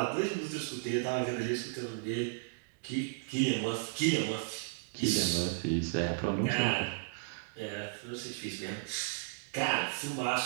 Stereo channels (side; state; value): left; silent; digital silence